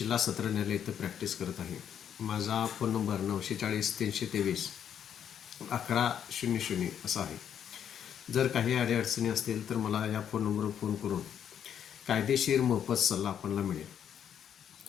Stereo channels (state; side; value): quieter; right; 9.0 dB